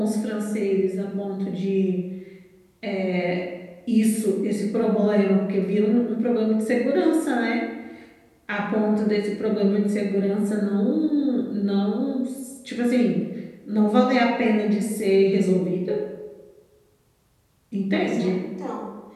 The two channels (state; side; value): identical; both; correlation 1.00